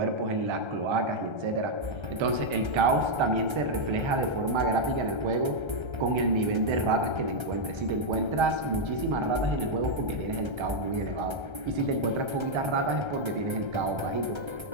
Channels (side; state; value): left; late; 1.3 ms